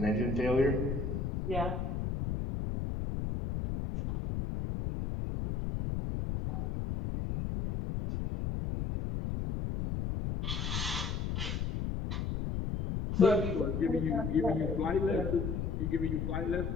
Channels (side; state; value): left; noise; rumble, 2 dB below the sound